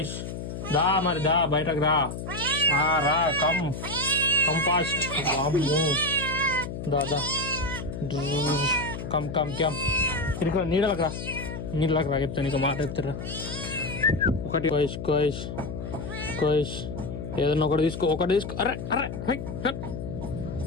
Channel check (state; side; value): noise; left; hum, 7 dB below the sound